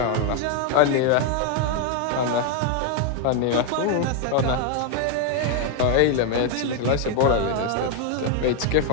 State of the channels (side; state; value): both; different; correlation 0.01